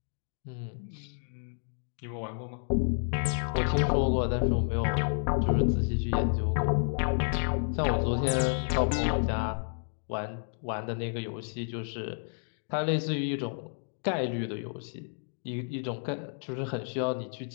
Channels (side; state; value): right; silent; digital silence